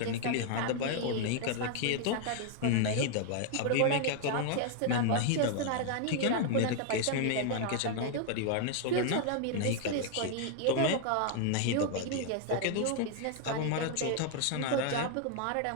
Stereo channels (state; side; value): different; both; correlation 0.00